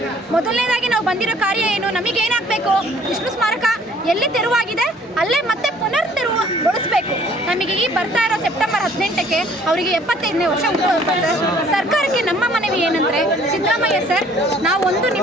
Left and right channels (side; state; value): both; normal; correlation 0.57